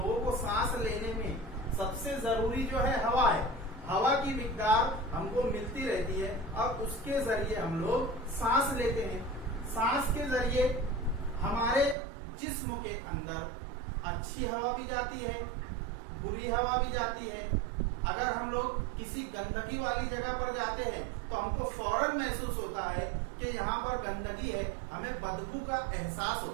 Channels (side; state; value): left; drops out; at 12.0 s